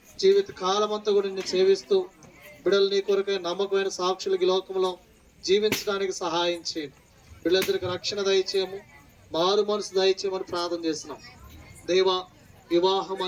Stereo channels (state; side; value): identical; both; correlation 1.00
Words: జీవిత కాలం అంతా కూడా నిన్ను సేవిస్తూ బిడ్డలు నీ కొరకై నమ్మకమైన సాక్షులకి లోకంలో జీవించడానికి సహాయం చేయండి. బిడ్డలిద్దరికి రక్షణ దయచేయము, మారు మనసు దయచేయమని ప్రార్థన చేస్తున్నాం. దేవా వివాహం